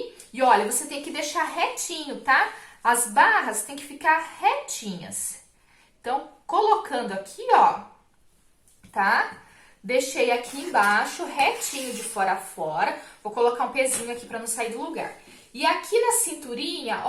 E olha, você tem que deixar retinho, tá? As barras tem que ficar retinhas. Então, colocando aqui, ó, tá? Deixei aqui embaixo, retinho de fora a fora. Vou colocar um pezinho aqui pra não sair do lugar. E aqui na cinturinha,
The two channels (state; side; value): identical; both; correlation 1.00